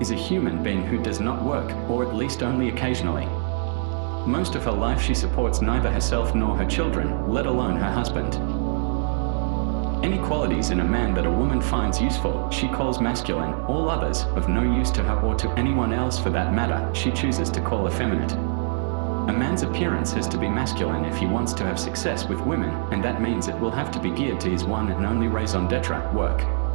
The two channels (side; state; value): left; silent; digital silence